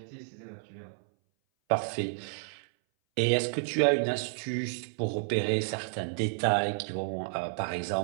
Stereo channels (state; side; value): silent; left; 57 dB below the other